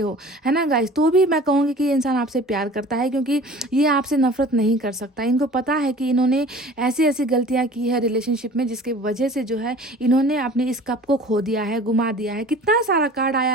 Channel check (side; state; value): both; normal; correlation 0.44